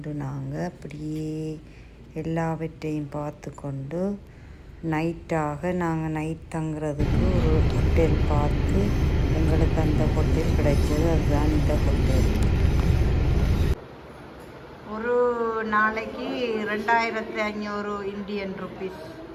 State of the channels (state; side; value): identical; both; correlation 1.00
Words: நாங்கள் அப்படியே எல்லாவற்றையும் பார்த்து கொண்டு நைட்டாக நாங்கள் நைட் தங்குறதுக்கு ஒரு ஹோட்டல் பார்த்து எங்களுக்கு அந்த ஹோட்டல் கிடைச்சது. அதுதான் இந்த ஹோட்டல். ஒரு நாளைக்கு 2500 இந்தியன் ருபீஸ்